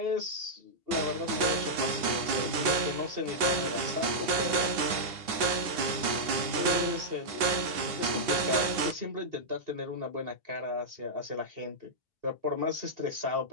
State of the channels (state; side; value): late; left; 2.7 ms